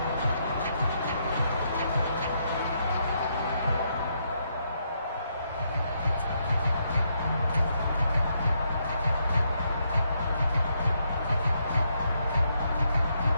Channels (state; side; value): inverted; both; correlation -0.77